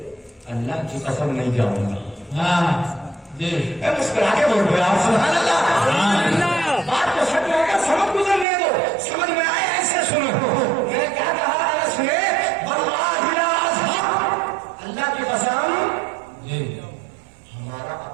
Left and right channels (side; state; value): left; drops out; at 8.5 s